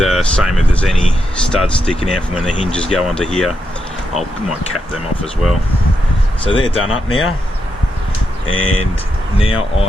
same if there's any studs sticking out from when the hinges go onto here, I might cap them off as well. So they're done up now, and now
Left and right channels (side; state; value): both; normal; correlation 0.84